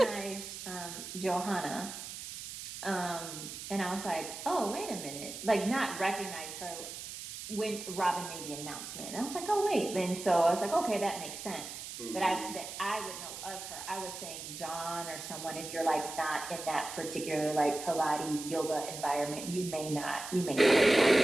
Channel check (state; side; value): noise; right; hiss, 9 dB below the sound